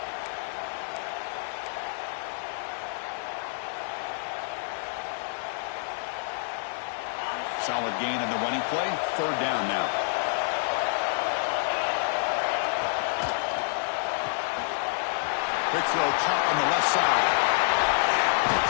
Solid gain on the running play. Third down now. Quick throw caught on the left side.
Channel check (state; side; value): silent; right; digital silence